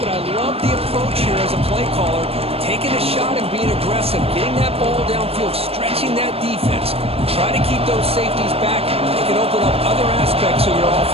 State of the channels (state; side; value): late; left; 0.28 ms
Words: I love the approach here as a play caller. Taking a shot and being aggressive, getting that ball downfield, stretching that defense. Try to keep those safeties back. It can open up other aspects of your